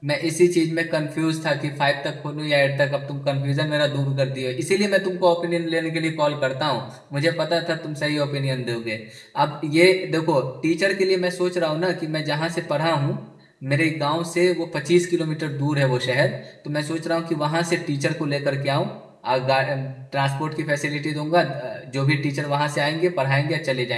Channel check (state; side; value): identical; both; correlation 1.00